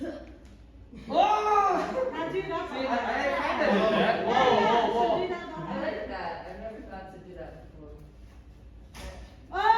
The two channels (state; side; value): identical; both; correlation 1.00